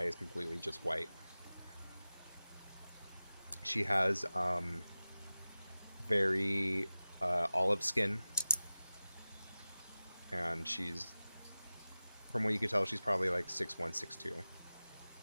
is completely just white. She has very olive skin, and from what you can tell, she's probably like 6'1", 6'2".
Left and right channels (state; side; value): inverted; both; correlation -0.96